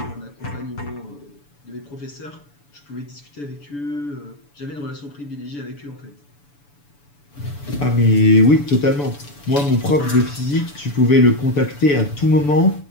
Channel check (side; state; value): right; late; 7.0 ms